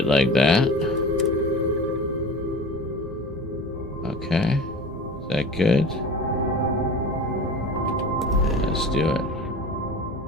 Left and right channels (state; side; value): normal; both; correlation 0.36